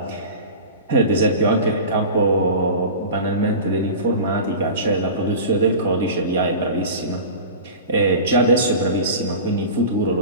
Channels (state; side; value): inverted; both; correlation -0.33